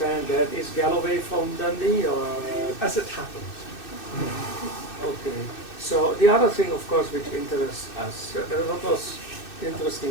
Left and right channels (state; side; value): late; right; 2.6 ms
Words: that. Is Galloway from Dundee or? As it happens. Okay. So the other thing, of course, which interests us, what was